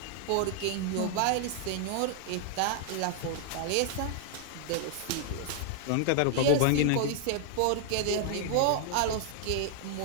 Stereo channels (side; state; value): both; different; correlation -0.01